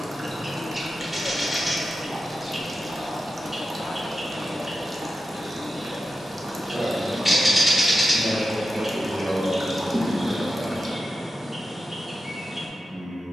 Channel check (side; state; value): both; normal; correlation 0.90